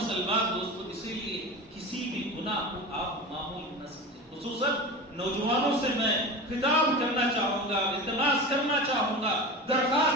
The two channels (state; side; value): normal; both; correlation 0.30